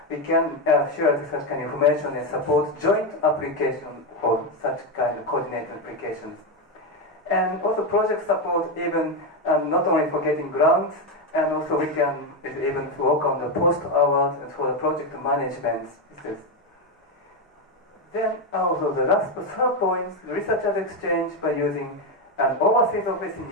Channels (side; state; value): both; normal; correlation 0.09